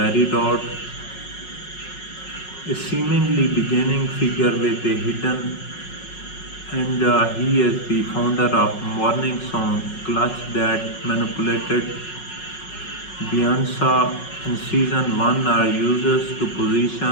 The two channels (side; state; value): right; late; 5.4 ms